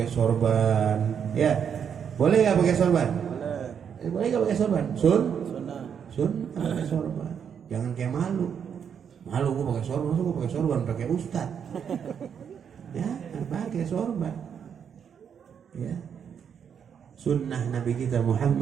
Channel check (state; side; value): quieter; left; 7.7 dB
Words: sorban, ya. Boleh nggak pakai sorban? Boleh. Boleh nggak pakai sorban? Sun pakai sorban. Jangan kayak malu gue pakai sorban, gue pakai sorban pakai ustad. Ya, pakai sorban. Ya. Sunnah Nabi kita